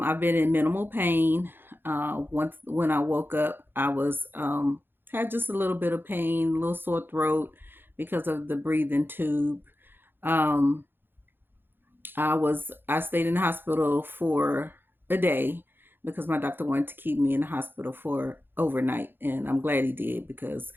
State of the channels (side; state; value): left; late; 0.10 ms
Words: been in minimal pain. Once when I woke up, I was had just a little bit of pain, a little sore throat because of the breathing tube. Um, I stayed in the hospital for a day because my doctor wanted to keep me in the hospital for overnight, and I'm glad he did because